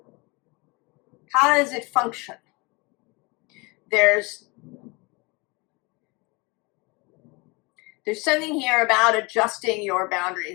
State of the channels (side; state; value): right; quieter; 27.3 dB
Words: does it function? There's something here about adjusting your